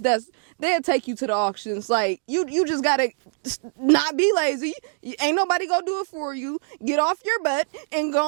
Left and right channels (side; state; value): left; silent; digital silence